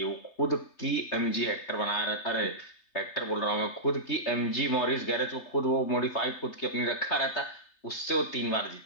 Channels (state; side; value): late; right; 3.3 ms